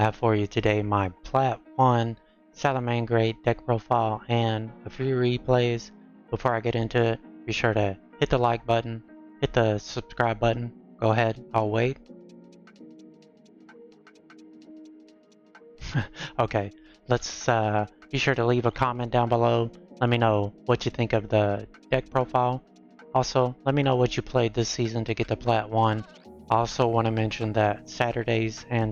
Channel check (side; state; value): both; identical; correlation 1.00